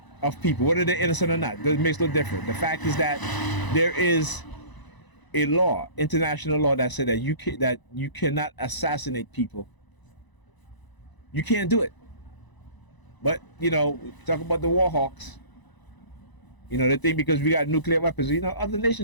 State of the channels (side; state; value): right; late; 1.0 ms